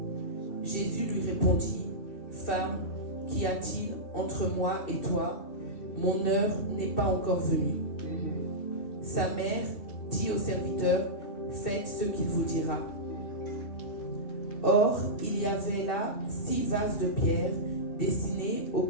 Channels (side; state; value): right; late; 2.6 ms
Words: Jésus lui répondit, « Femme, qu'y a-t-il entre moi et toi? Mon heure n'est pas encore venue. » Sa mère dit au serviteur, « Faites ce qu'il vous dira. » Or, il y avait là 6 vases de pierre destinés aux